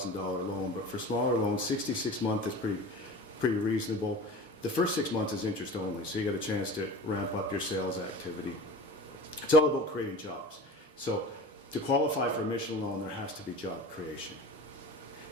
loan, but for smaller loans, 66-month is pretty reasonable. The first 6 months is interest only, so you get a chance to ramp up your sales activity. It's all about creating jobs. So to qualify for a Michelin loan, there has to be job creation.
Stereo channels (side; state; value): both; normal; correlation 0.36